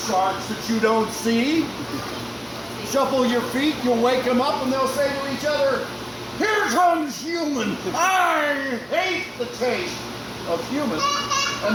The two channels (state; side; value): identical; both; correlation 1.00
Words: sharks that you don't see? Shuffle your feet, you'll wake them up and they'll say to each other, "Here comes human! I hate the taste of human!"